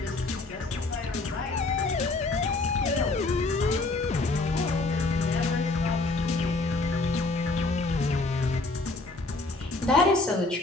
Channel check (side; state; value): right; quieter; 3.2 dB